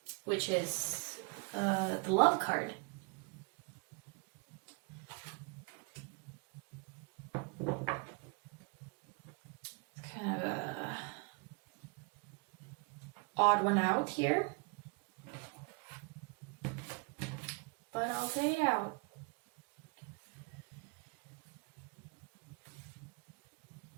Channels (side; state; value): left; quieter; 31.3 dB